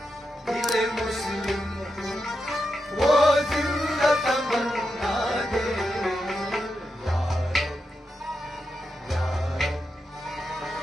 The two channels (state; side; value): normal; both; correlation 0.87